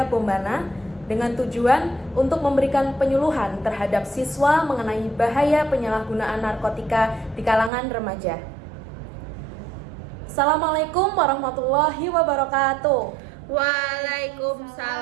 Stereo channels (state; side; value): drops out; left; at 7.7 s